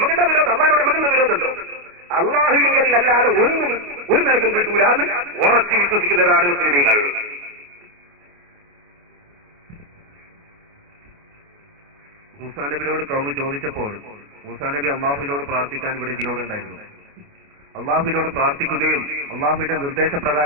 വിരോധം? അള്ളാഹിനോട് നമുക്കെന്താ വിരോധമുണ്ടോ? അള്ളാഹുവിൽ അല്ലാതെ ഒന്നും ഒരു നിലക്കും കിട്ടൂല എന്ന് ഉറച്ചു വിശ്വസിക്കുന്നവരാണ് മുസ്ലിമീങ്ങൾ. മൂസാ നബിയോട് കൗമ് ചോദിച്ചപ്പോൾ മൂസാ നബി അള്ളാഹുവിനോട് പ്രാർത്ഥിക്കാൻ ഇവിടെ ഇതിനോടുണ്ടായിരുന്നു. അള്ളാഹുവിനോട് പ്രാർത്ഥിക്കുകയും അള്ളാഹുവിന്റെ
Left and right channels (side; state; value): left; late; 28 ms